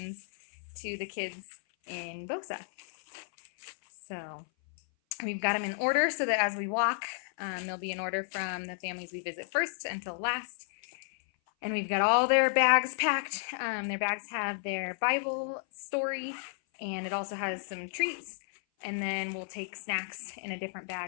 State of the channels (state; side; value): silent; right; 56 dB below the other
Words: to the kids in Bosa. So we've got them in order so that as we walk, they'll be in order from the families we visit first until last. And we've got all their bags packed. Their bags have their Bible story, and it also has some treats. And then we'll take snacks in a different